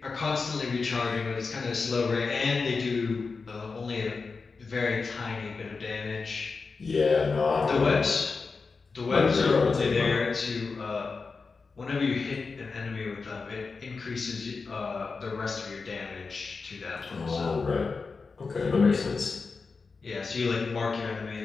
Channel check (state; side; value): quieter; right; 4.5 dB